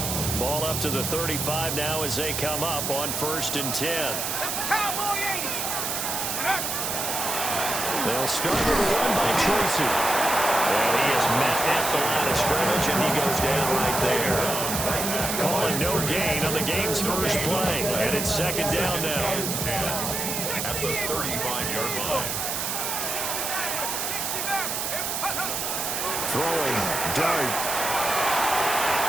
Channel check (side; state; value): right; noise; hiss, 2 dB below the sound